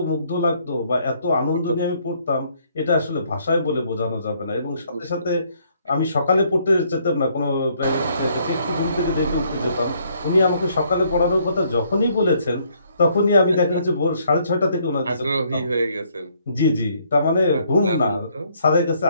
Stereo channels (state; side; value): inverted; both; correlation -0.67